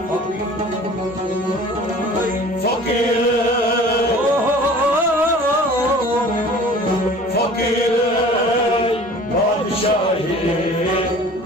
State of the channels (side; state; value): both; normal; correlation 0.45